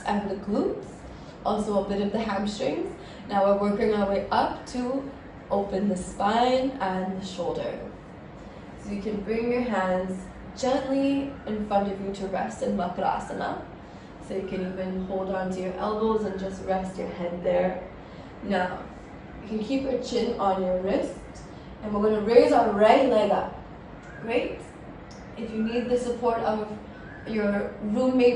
and the glutes, also a bit of the hamstrings. Now we're working our way up to open the spine and the shoulder. So you can bring your hands gently in front of you to rest in Barigasana. So you can even hold on to your elbows and just rest your head there. Now, you can keep your chin on your wrist, and we're going to raise our right leg up. Great. If you need the support of your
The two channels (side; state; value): both; identical; correlation 1.00